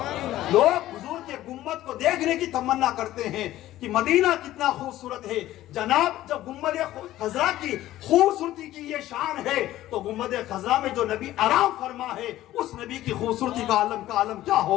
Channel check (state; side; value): quieter; right; 14.6 dB